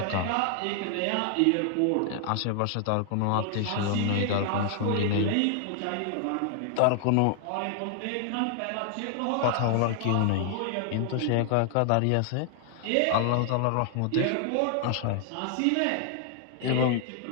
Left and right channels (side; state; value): both; different; correlation 0.00